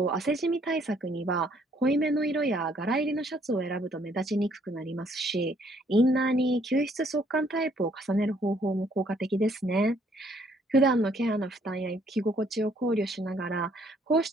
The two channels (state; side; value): normal; both; correlation 0.66